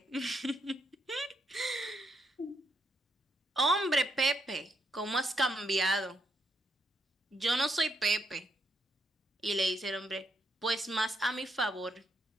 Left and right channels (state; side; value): normal; both; correlation 0.77